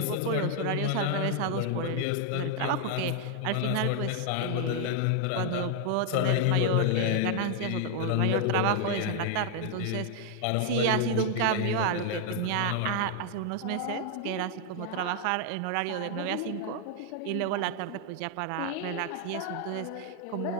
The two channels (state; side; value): different; both; correlation 0.00